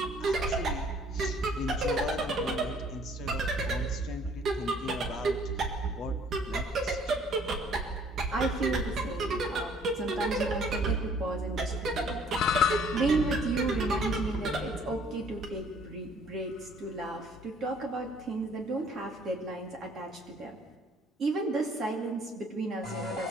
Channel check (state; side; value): normal; both; correlation 0.58